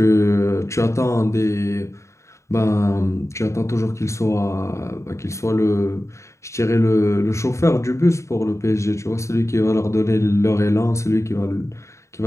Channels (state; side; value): late; right; 0.14 ms